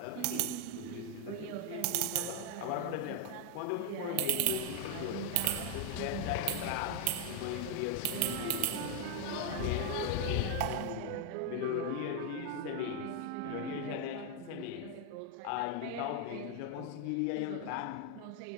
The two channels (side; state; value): both; different; correlation 0.01